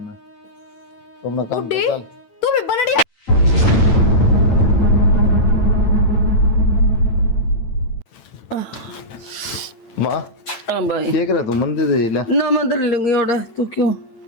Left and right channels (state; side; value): late; right; 9.0 ms